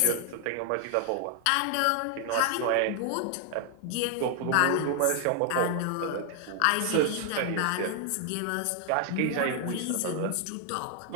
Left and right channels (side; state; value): both; different; correlation 0.00